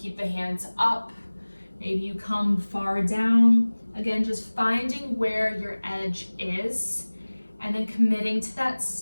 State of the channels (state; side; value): inverted; both; correlation -1.00